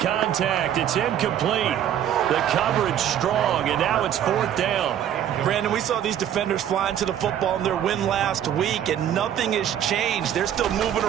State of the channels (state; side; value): quieter; left; 10.2 dB